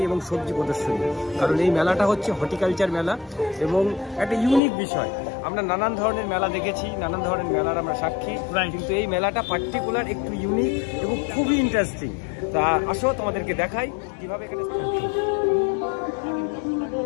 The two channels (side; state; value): right; drops out; at 4.6 s